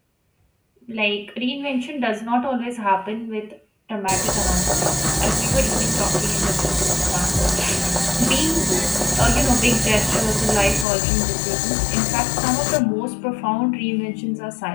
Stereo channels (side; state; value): right; drops out; at 10.9 s